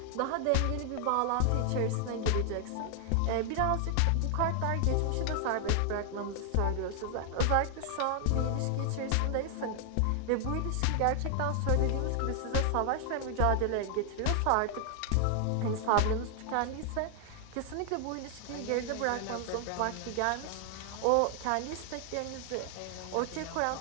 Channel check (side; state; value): both; different; correlation 0.00